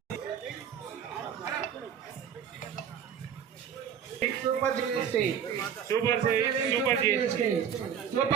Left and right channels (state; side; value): quieter; left; 8.2 dB